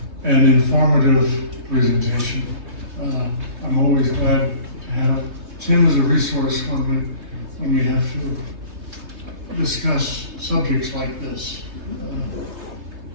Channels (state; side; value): late; left; 3.3 ms